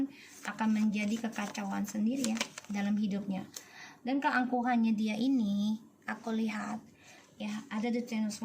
akan menjadi kekacauan sendiri, ya, dalam hidupnya. Dan keangkuhannya dia ini, aku lihat, ya, ada the Ten of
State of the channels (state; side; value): identical; both; correlation 1.00